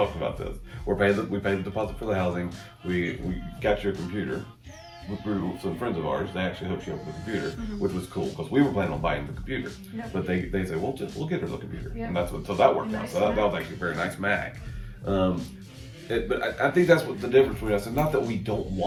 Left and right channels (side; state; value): both; identical; correlation 1.00